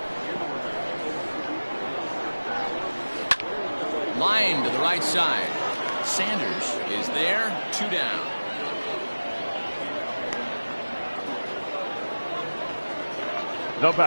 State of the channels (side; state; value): both; inverted; correlation -1.00